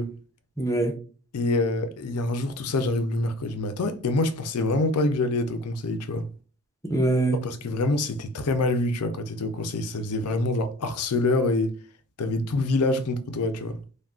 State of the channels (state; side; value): normal; both; correlation 0.43